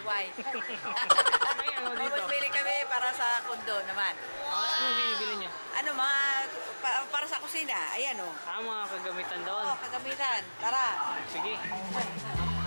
May ano dito? Mamimili kami para sa kundo naman. Anong binibili niyo? Ano, mga para sa kusina. Ayan o. Mga kagamitan doon. Oh, kagamitan. Tara. Sige.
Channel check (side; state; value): both; inverted; correlation -1.00